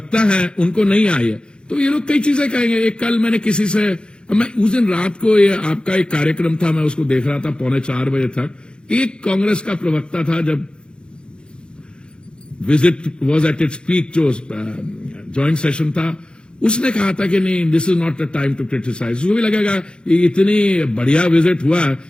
है उनको नहीं आई है। तो ये लोग कई चीजें कहेंगे। एक कल मैंने किसी से, मैं उस दिन रात को, ये आपका एक कार्यक्रम था, मैं उसको देख रहा था 3:45 बजे तक। एक कांग्रेस का प्रवक्ता था, जब visit was at its peak, जो ज्वाइंट सेशन था, उसने कहा था कि नहीं, this is not the time to criticise. उसको भी लगेगा कि इतनी बढ़िया विजिट हुआ,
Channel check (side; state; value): right; late; 0.052 ms